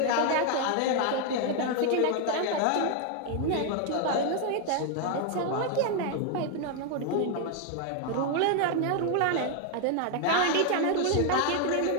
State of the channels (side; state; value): both; different; correlation 0.00